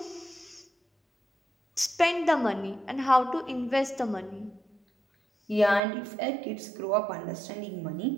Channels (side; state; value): left; drops out; at 5.8 s